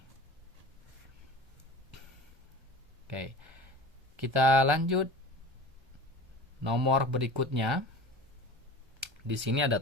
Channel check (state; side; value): late; left; 1.3 ms